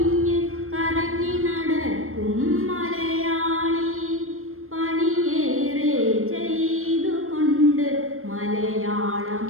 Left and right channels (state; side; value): late; left; 0.62 ms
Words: കറങ്ങി നടക്കും മലയാളി, പണിയേറെ ചെയ്തുകൊണ്ട് മലയാള